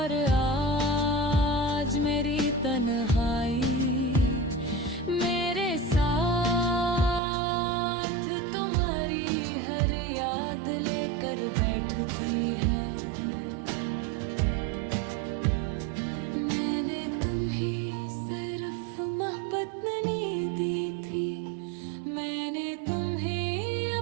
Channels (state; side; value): drops out; left; at 7.2 s